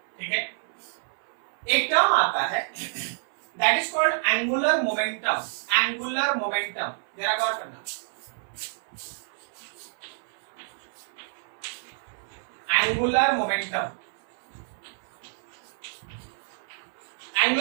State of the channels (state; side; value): silent; left; 57 dB below the other